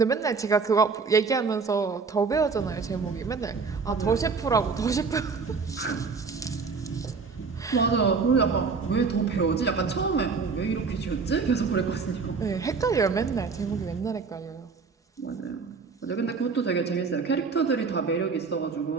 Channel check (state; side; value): quieter; left; 4.9 dB